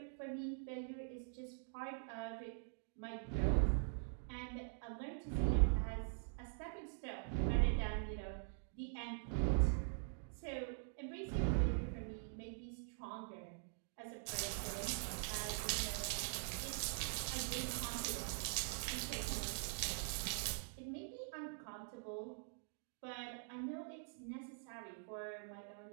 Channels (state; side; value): silent; left; digital silence